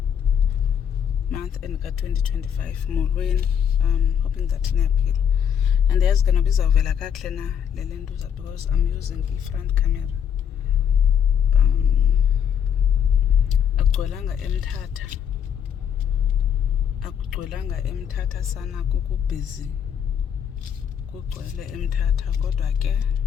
ka-2025. Molweni, hoping that niyaphila. And yazi ke noba izawuvela kakuhle na le ntuza because I'm using i-front camera. Akugcwelanga emthatha sana, kukubhizi kugcwele emthatha, kodwa ke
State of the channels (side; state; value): right; quieter; 8.3 dB